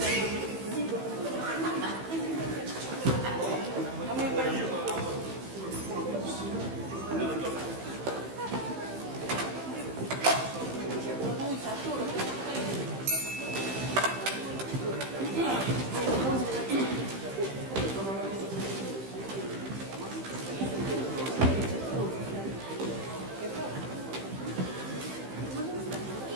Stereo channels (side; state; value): left; late; 15 ms